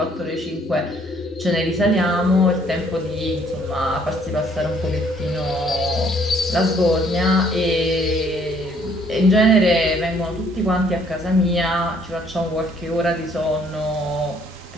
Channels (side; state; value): both; normal; correlation 0.63